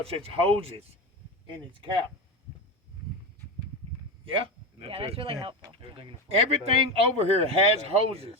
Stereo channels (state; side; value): normal; both; correlation 0.18